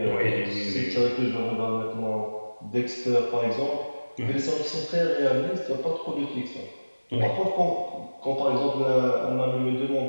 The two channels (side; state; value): both; inverted; correlation -1.00